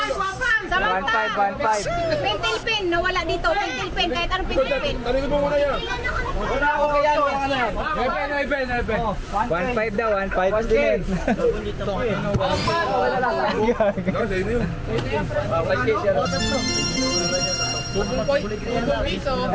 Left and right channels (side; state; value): both; identical; correlation 1.00